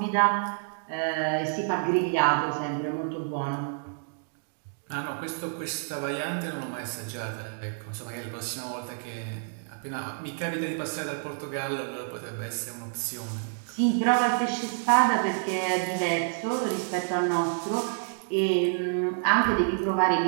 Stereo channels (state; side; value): silent; left; digital silence